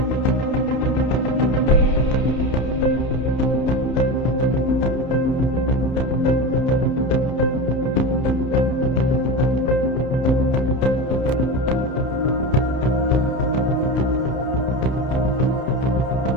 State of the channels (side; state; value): right; late; 31 ms